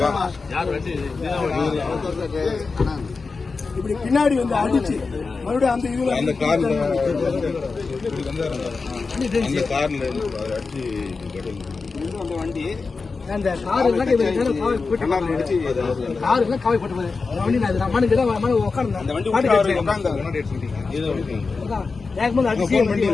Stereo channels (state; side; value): quieter; right; 4.4 dB